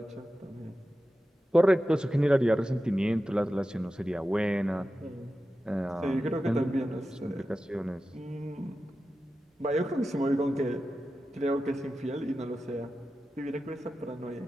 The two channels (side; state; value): both; normal; correlation 0.93